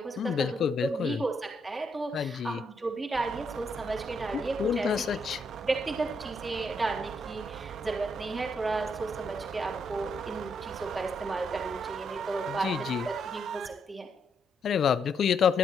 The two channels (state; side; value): normal; both; correlation 0.76